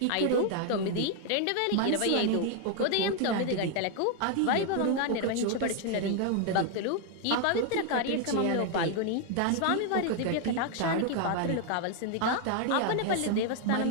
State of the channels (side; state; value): both; different; correlation 0.00